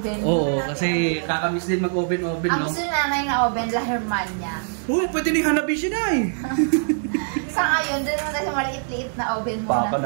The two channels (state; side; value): silent; left; digital silence